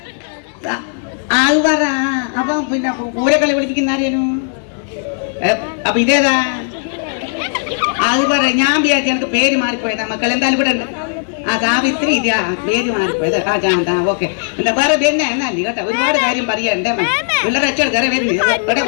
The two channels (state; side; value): silent; right; 63 dB below the other